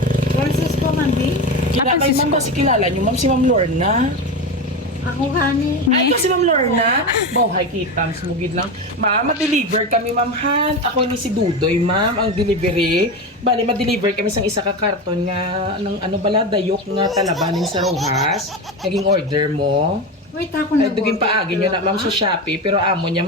Francisco Mandi? Kaya kay ma'am, kasi kilala nyo, ma'am, si Ma'am Lorna. Ako gani. Ay, ito si Ma'am Lorna. Bawhay kita, smugid lang. Ma'am, ma-deliver kami, ma'am, han. Ako ni si Dudoy, ma'am, ang delivery. Bali, ma-deliver kami sa isa ka karton nga, ng ano bala, dayok nga talabanin sa Rojas. Naging order mo. Wait ako Ay, nag-order. duging paagin nyo na, ma'am, sa Shopee. Pero amo niyang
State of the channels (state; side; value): normal; both; correlation 0.21